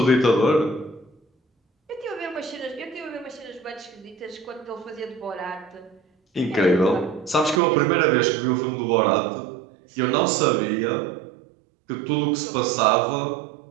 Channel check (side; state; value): left; drops out; at 7.6 s